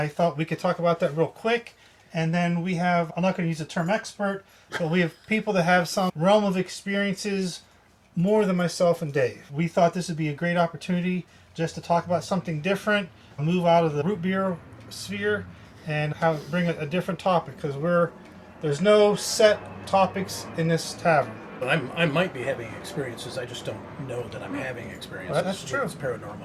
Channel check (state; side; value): identical; both; correlation 1.00